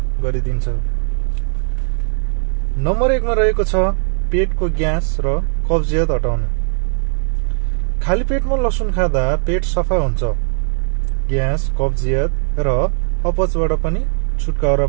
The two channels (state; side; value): silent; left; 67 dB below the other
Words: गरिदिन्छ। नम्बर 1 मा रहेको छ पेटको ग्यास र कब्जियत हटाउने। खाली पेटमा लसुन खादा पेट सफा हुन्छ। ग्यास, कब्जियत र अपचबाट पनि छुटकारा